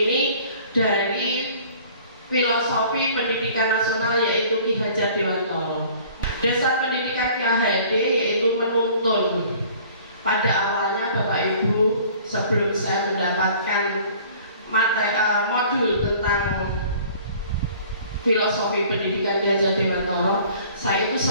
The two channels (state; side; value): inverted; both; correlation -0.51